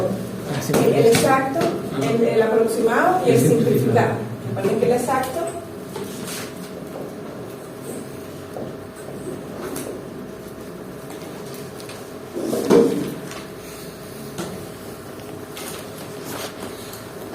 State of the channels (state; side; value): identical; both; correlation 1.00